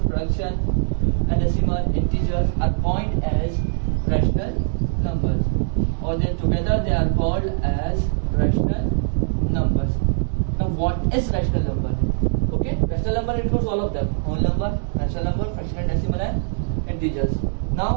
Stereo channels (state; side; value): silent; left; digital silence